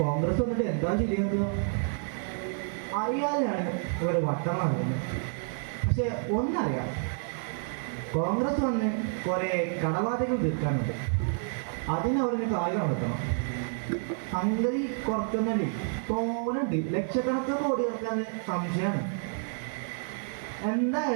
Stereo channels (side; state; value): left; silent; 58 dB below the other